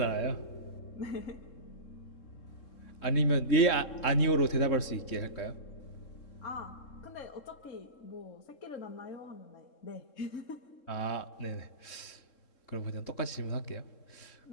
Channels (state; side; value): late; right; 3.7 ms